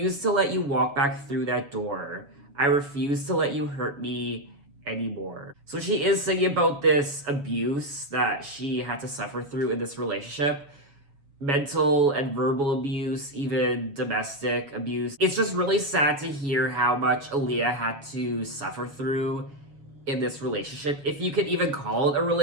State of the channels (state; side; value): late; left; 7.1 ms